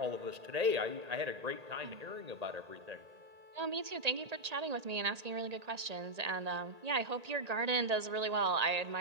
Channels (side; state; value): left; late; 1.8 ms